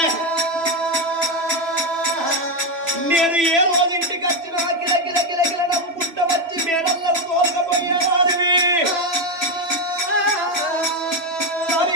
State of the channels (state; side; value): late; left; 3.0 ms